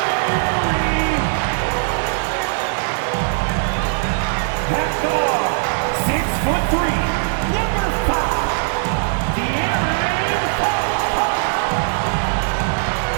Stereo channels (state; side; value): silent; left; digital silence